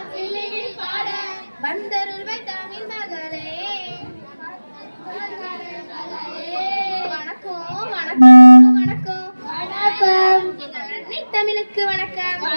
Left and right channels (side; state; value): both; inverted; correlation -1.00